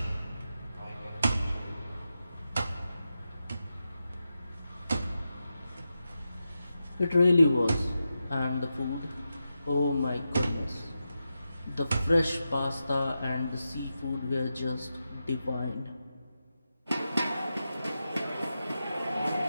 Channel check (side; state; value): both; inverted; correlation -0.89